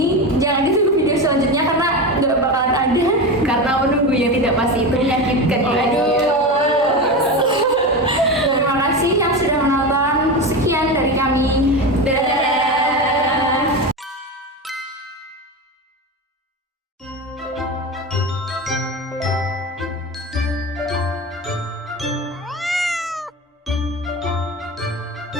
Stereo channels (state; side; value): normal; both; correlation 0.22